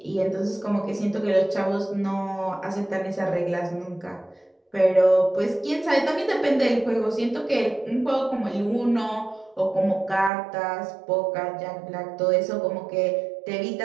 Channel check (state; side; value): drops out; left; at 10.3 s